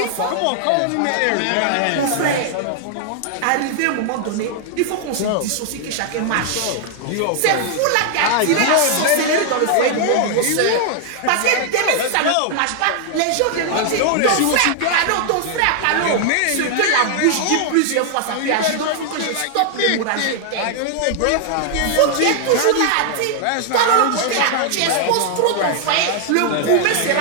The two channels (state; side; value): different; both; correlation 0.00